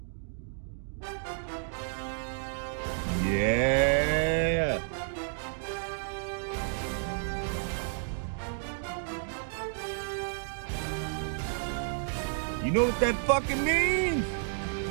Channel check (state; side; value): silent; left; digital silence